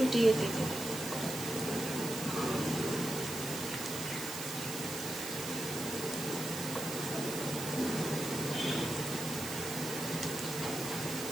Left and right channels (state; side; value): noise; right; hiss, 6 dB below the sound